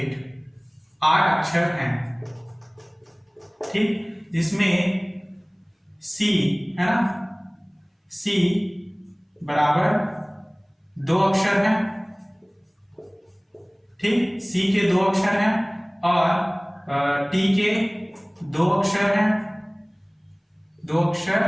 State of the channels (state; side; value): identical; both; correlation 1.00